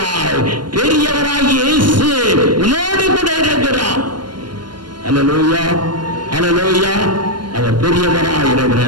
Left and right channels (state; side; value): late; left; 0.71 ms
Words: பெரியவராகி இயேசு உன்னோடு கூட இருக்கிறார். அல்லேலூயா, அல்லேலூயா. அவர் பெரியவராய்